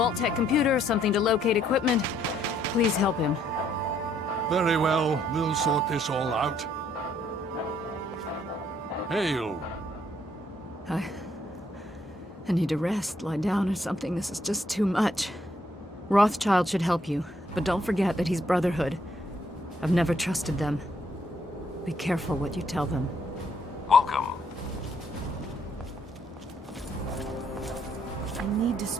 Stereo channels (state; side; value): normal; both; correlation 0.69